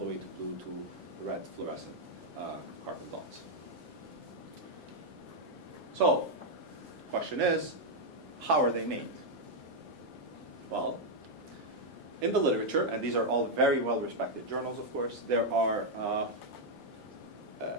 way to blue to red fluorescent carbon dots. So, question is, how are they made? Well, in the literature, and these are all very well-respected journals, of course, there are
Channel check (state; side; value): normal; both; correlation -0.01